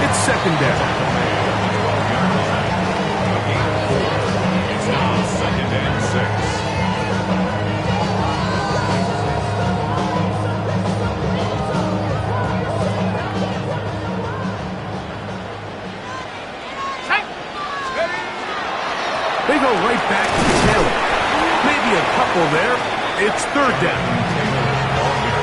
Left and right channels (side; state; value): both; identical; correlation 1.00